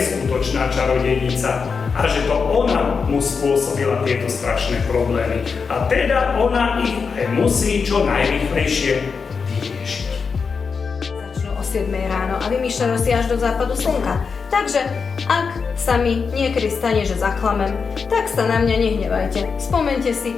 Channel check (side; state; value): right; quieter; 5.4 dB